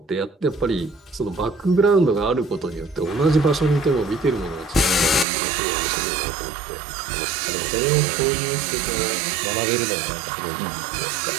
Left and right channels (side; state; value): left; drops out; at 5.2 s